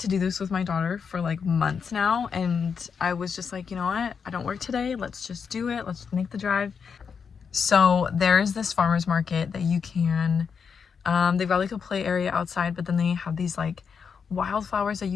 do this with my daughter for like months now, and I was just like, you know what? I don't work today. Let's just do it. Let's make the drive. So there is this farmer's market that you can, they've got like a play area outside, but then they have these like wildflowers that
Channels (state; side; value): quieter; right; 6.2 dB